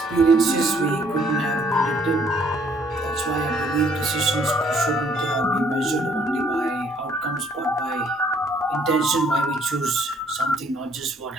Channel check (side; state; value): both; normal; correlation 0.64